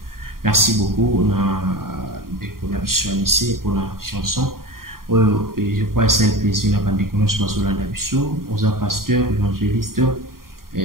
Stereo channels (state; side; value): late; left; 0.92 ms